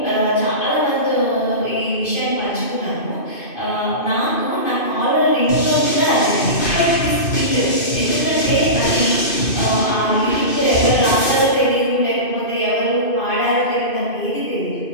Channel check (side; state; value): right; late; 2.5 ms